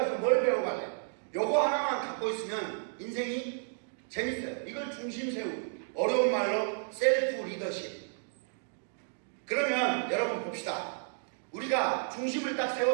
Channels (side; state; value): left; silent; digital silence